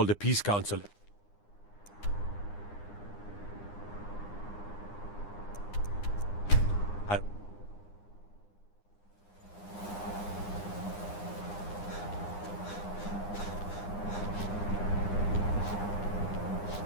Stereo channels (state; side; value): late; right; 9.8 ms